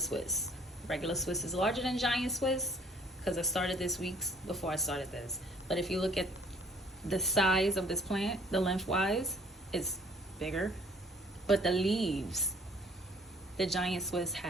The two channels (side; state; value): both; normal; correlation 0.58